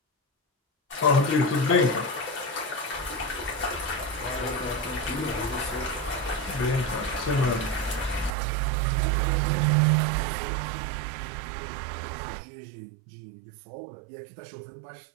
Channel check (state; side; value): drops out; left; at 8.3 s